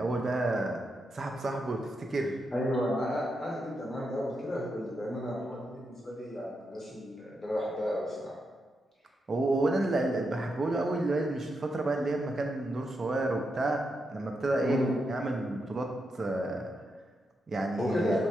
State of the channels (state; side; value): normal; both; correlation 0.84